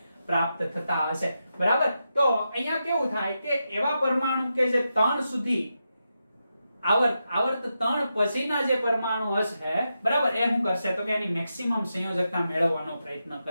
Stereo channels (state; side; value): inverted; both; correlation -0.87